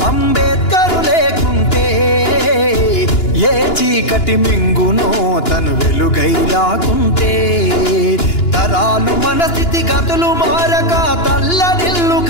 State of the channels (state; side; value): late; right; 2.9 ms